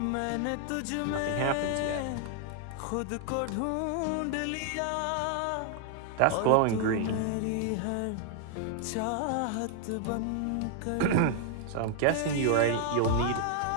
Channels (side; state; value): both; different; correlation 0.00